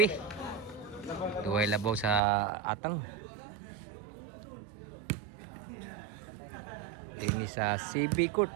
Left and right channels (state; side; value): drops out; left; at 2.2 s